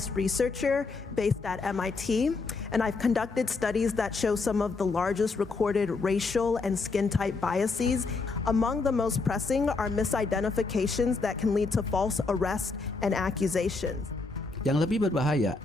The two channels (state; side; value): quieter; right; 4.0 dB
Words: researcher based at MIT, and I've conducted studies that show some of the largest recorded racial and skin type biases. Among the most pressing are misidentifications that can lead to false arrest and accusations. Yang lebih berbahaya,